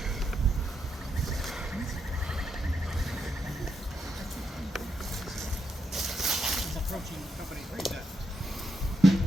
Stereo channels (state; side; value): normal; both; correlation 0.82